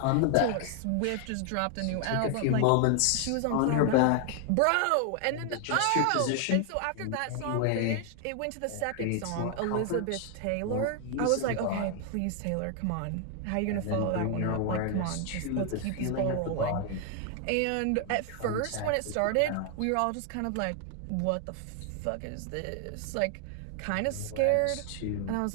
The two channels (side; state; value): both; different; correlation 0.00